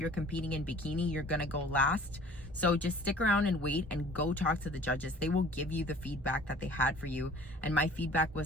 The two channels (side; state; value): both; normal; correlation 0.50